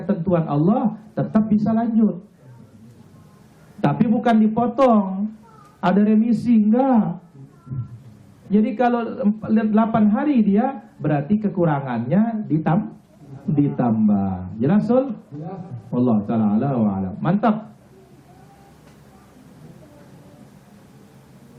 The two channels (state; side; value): identical; both; correlation 1.00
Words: Allah, tetap bisa lanjut. Tapi bukan dipotong. Ada remisi, enggak. Jadi kalau 8 hari dia, berarti kekurangannya ditambah. Jelas, Sul? Allah Ta'ala wa'alam. Mantap.